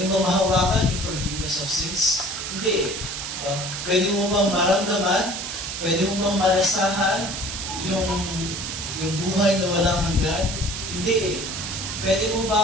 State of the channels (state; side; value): noise; right; hiss, 6 dB below the sound